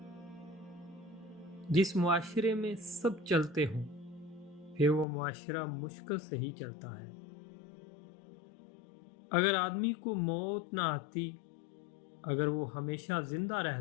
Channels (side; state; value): right; drops out; at 5.1 s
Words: جس معاشرے میں سب چلتے ہوں، پھر وہ معاشرہ مشکل سے ہی چلتا ہے۔ اگر آدمی کو موت نہ آتی، اگر وہ ہمیشہ زندہ